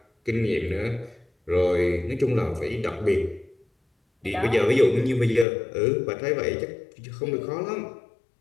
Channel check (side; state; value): right; drops out; at 5.5 s